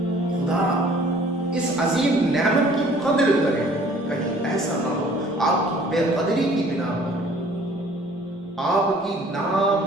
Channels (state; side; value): normal; both; correlation 0.54